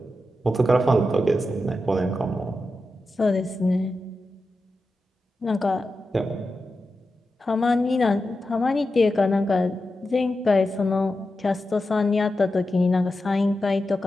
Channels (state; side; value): normal; both; correlation 0.91